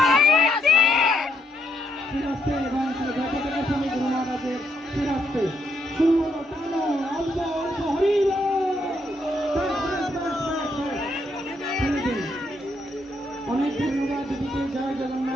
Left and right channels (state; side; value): normal; both; correlation 0.76